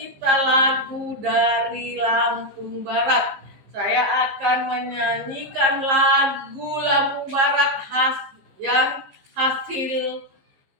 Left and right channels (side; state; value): left; late; 15 ms